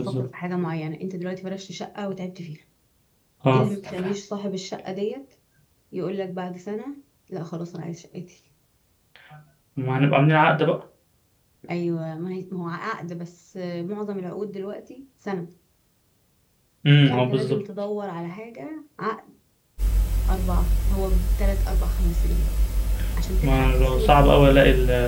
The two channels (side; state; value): both; identical; correlation 1.00